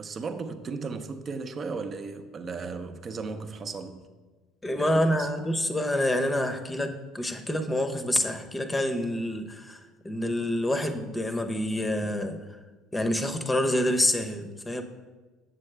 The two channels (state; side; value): normal; both; correlation 0.84